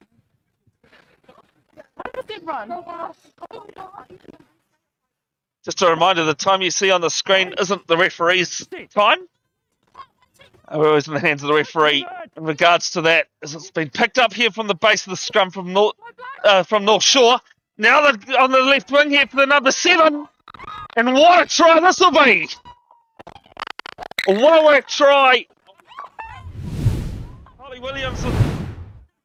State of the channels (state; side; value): identical; both; correlation 1.00